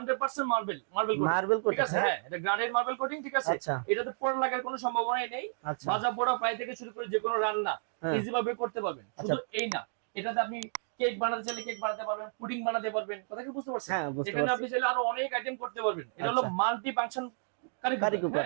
মার্বেল মার্বেল কোটিং, মার্বেল ঠিক কোটিং, আছে। হ্যাঁ, হ্যাঁ, এটা গ্রানাইট মার্বেল কোটিং, ঠিক আছে। আচ্ছা, এটাতে পোড়া লাগার কোনো সম্ভাবনাই নেই। আচ্ছা, ভাজা পোড়া ফ্রাই থেকে শুরু করে যে কোনো রান্না হ্যাঁ, ইজি ভাবে করতে পারবেন। আচ্ছা, শুধু এই না, এটাতে আপনি কেক বানাতে চাইলে কেক বানাতে পারবেন, পুডিং বানাতে পারবেন, কথা কি বুঝতে পারছেন? হ্যাঁ, বুঝতে এখানে পারছি। আপনি চাইলে আরো অনেক আইটেম করতে পারবেন। এটা হলো আচ্ছা, মাল্টি ফাংশন কারি কারি কুকার, কুকার,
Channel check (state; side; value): silent; left; digital silence